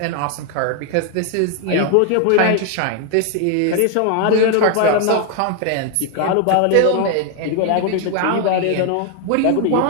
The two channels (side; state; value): both; different; correlation 0.00